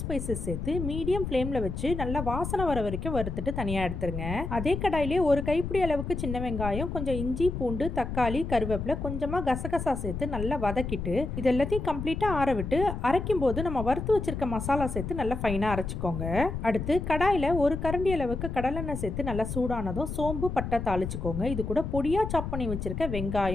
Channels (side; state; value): left; noise; rumble, 5 dB below the sound